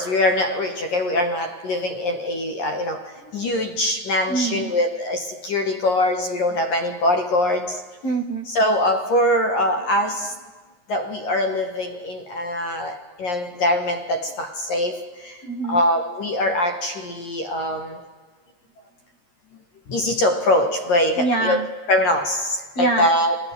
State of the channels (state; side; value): late; right; 11 ms